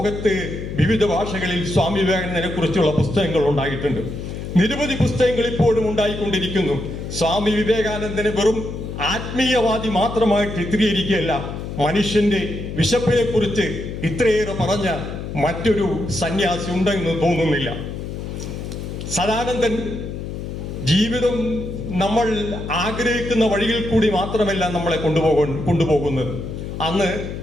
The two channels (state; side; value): noise; left; hum, 7 dB below the sound